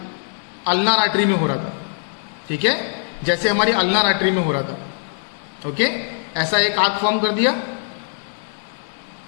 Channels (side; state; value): right; silent; 65 dB below the other